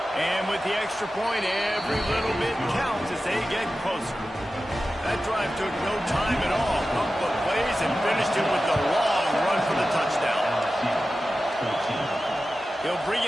And with the extra point, every little bit counts as they get closer. That drive took no time at all. Pump the plays and finished it with the long run for the touchdown. He'll bring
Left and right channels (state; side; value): normal; both; correlation 0.94